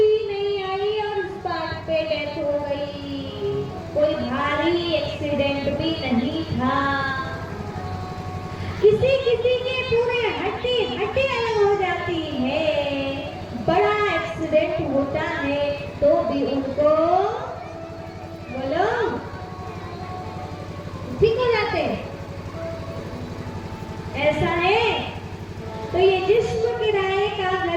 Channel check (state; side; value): identical; both; correlation 1.00